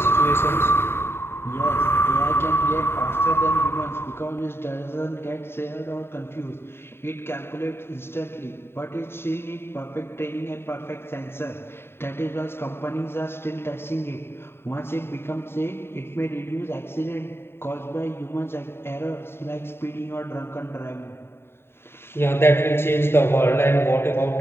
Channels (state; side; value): late; right; 0.11 ms